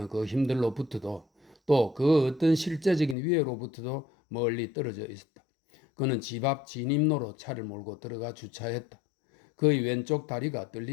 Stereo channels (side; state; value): right; drops out; at 3.2 s